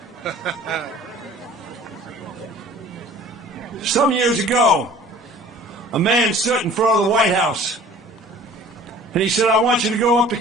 Some years ago, a man stood in front of the White House, and he said, I want you to go up to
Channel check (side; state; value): both; normal; correlation 0.48